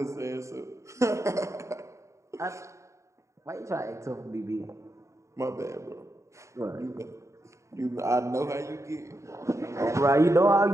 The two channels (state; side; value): late; left; 0.14 ms